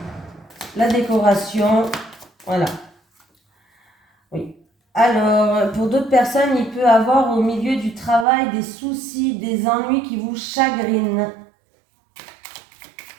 la décoration. Voilà. Oui. Alors, pour d'autres personnes, il peut avoir au milieu du travail des soucis, des ennuis qui vous chagrinent.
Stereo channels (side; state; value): left; drops out; at 8.2 s